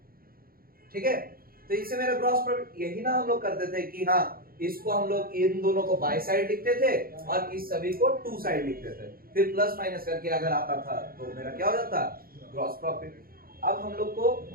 ठीक है। तो इससे मेरा ग्रॉस प्रॉफिट, यही ना हम लोग करते थे कि हाँ इसको हम लोग इन दोनों को बाय साइड लिखते थे और इस सभी को टू साइड लिखते थे, फिर प्लस माइनस करके अगर आता था तो मेरा क्या हो जाता, ग्रॉस प्रॉफिट। अब हम लोग को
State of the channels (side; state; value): left; late; 0.43 ms